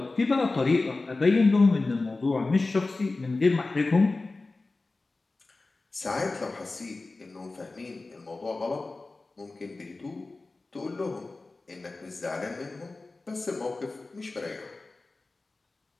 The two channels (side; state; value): right; quieter; 3.4 dB